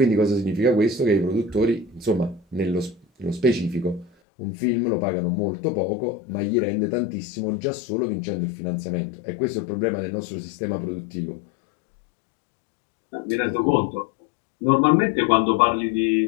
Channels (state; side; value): drops out; right; at 4.1 s